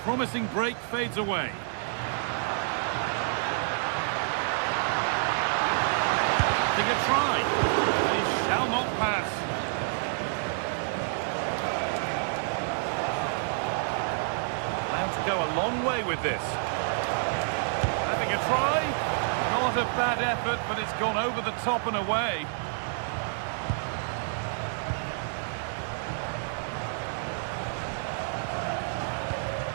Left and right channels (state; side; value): silent; left; 59 dB below the other